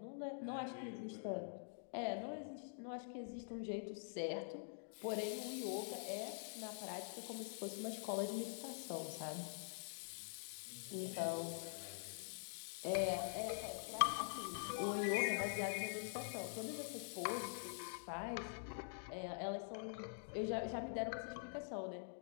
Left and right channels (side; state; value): right; silent; digital silence